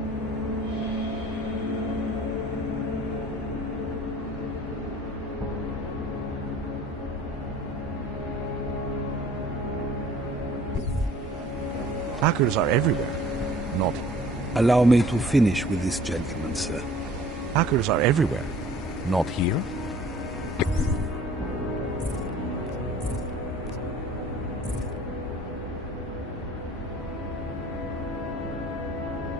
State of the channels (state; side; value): normal; both; correlation 0.50